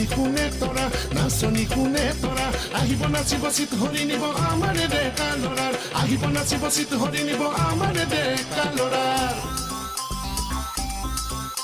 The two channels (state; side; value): identical; both; correlation 1.00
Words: কোনে তৰা আহিব নাচিব চিত হৰি নিব আমাৰে ডেকা ল'ৰাৰ আহিব নাচিব চিত হৰি নিব আমাৰে ডেকা ল'ৰাৰ